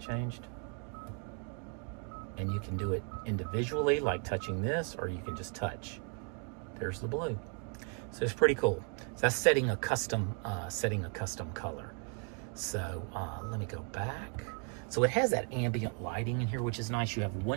And you can do it individually, like touching this, or you can just touch. There's the blue. So it's pretty cool. So that's setting a custom color. So let me go back. So it has that ambient lighting in here, which is nice. You have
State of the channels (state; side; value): quieter; left; 37.3 dB